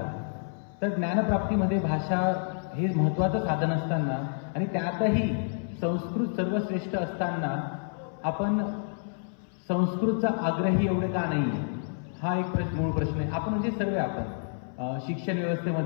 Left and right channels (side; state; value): right; silent; 59 dB below the other